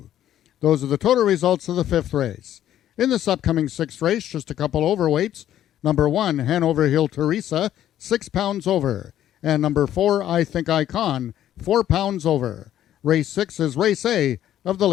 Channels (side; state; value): right; quieter; 11.7 dB